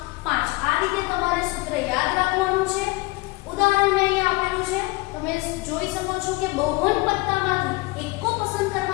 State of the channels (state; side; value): quieter; right; 23.0 dB